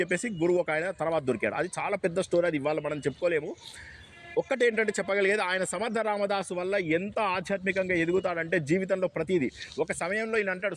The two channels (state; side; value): identical; both; correlation 1.00